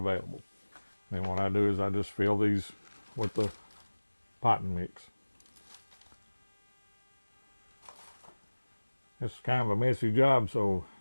Then what I do is I just fill these with the potting mix. It's kind of a messy job, so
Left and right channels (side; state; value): both; inverted; correlation -1.00